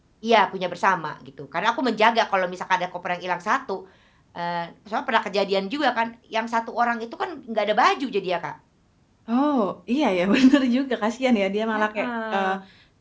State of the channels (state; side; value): identical; both; correlation 1.00